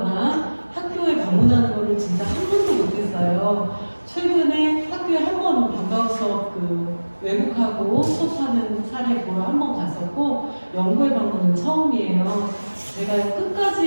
학교에 방문하는 거를 진짜 한 번도 못했어요. 최근에 학교에 한 번 방과후 수업 외국하고 수업하는 사례 보러 한 번 갔었고 연구회 방문은 처음이에요. 제가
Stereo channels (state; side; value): inverted; both; correlation -1.00